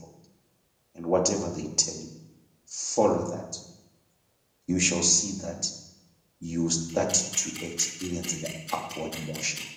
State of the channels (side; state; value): both; identical; correlation 1.00